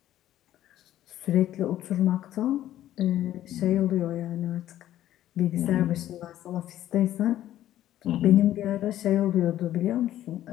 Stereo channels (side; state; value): right; quieter; 12.8 dB